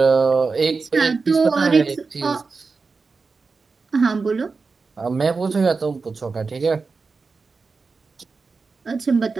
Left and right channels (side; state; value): left; quieter; 4.4 dB